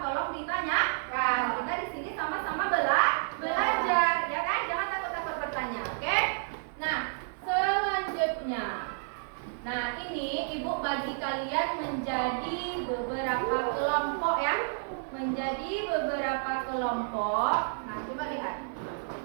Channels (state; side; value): silent; left; 57 dB below the other